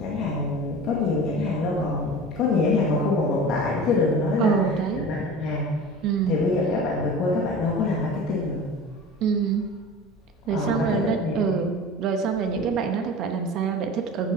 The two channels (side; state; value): both; normal; correlation 0.37